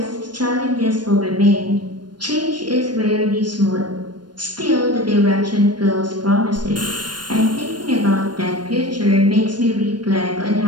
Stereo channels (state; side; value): late; left; 0.71 ms